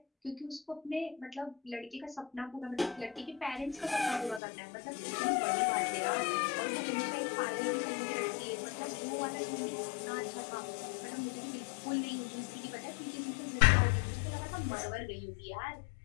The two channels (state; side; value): drops out; right; at 4.4 s